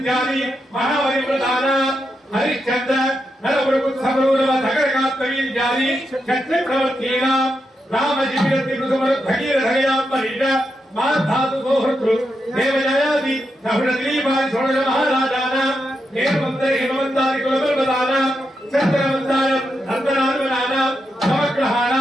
మహావరివ్రతానాం హరిశ్చంద్ర నరపురపుత్సమరూరవ ధగరకాత్మవీర్యాది క్షత్రి ప్రవర్తీనాం రామజీవిరతి భగీరథయాత్మరీట మాధాతు సోహృతృ దేవజయాది నహుడదీపాది షోడశ మహారాజానాం హేమంతరి హిమవంతాది కులపర్వతానాం చంద్రవంతానం నందనానుమనానాం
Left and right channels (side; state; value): both; normal; correlation 0.85